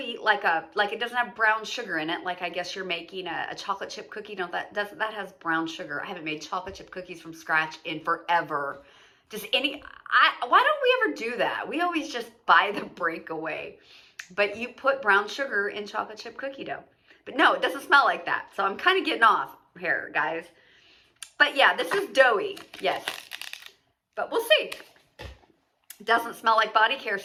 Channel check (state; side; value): identical; both; correlation 1.00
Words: like it doesn't have brown sugar in it. Like I guess you're making a chocolate chip cookie. No, that has brown sugar. I haven't made chocolate chip cookies from scratch in forever. Why don't we ever do that? We always just buy the breakaway. But you put brown sugar in chocolate chip cookie dough. But no, it doesn't smell like that. So I'm kind of getting off here, guys. But yeah, this is doughy. Yes. But we'll see. It doesn't smell like body care,